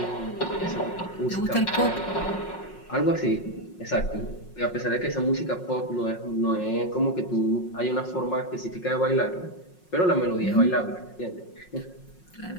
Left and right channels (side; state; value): right; late; 5.5 ms